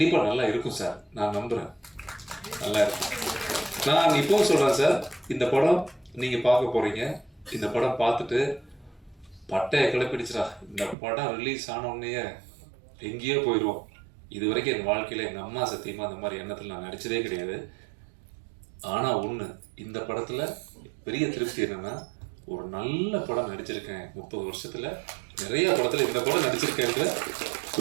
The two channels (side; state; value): left; drops out; at 11.0 s